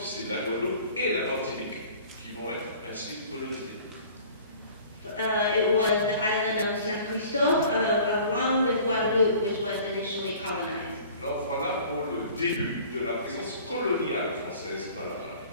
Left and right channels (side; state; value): both; inverted; correlation -0.48